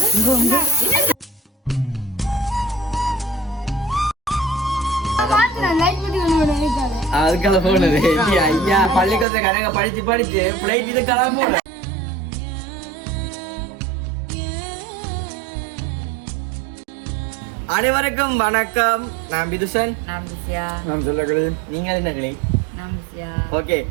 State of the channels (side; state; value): left; drops out; at 9.2 s